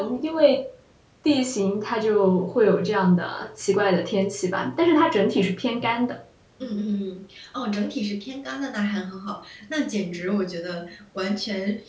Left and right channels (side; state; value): both; identical; correlation 1.00